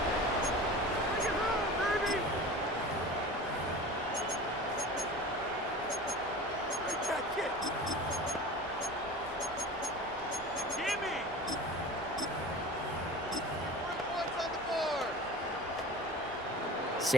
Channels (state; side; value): normal; both; correlation 0.36